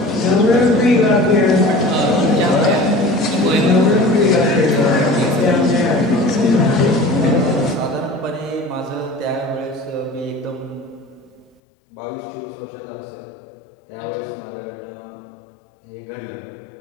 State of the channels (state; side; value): drops out; right; at 11.6 s